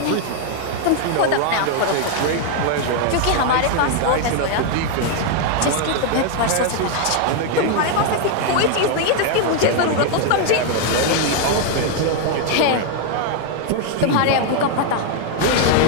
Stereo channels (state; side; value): different; both; correlation 0.00